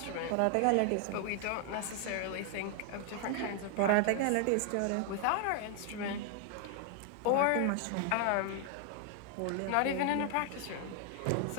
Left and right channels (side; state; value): both; different; correlation 0.00